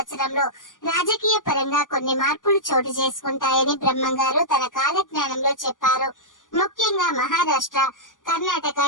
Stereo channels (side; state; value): right; late; 0.88 ms